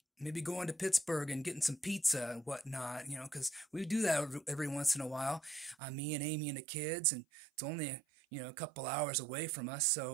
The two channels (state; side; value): drops out; left; at 5.8 s